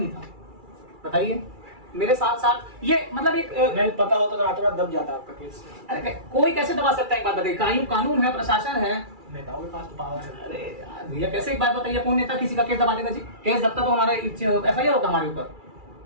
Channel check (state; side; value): late; left; 2.3 ms